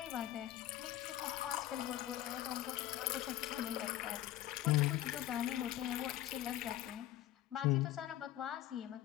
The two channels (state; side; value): quieter; right; 13.5 dB